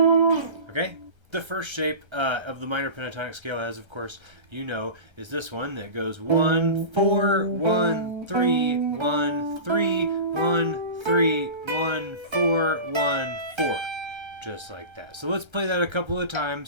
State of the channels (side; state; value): left; late; 1.3 ms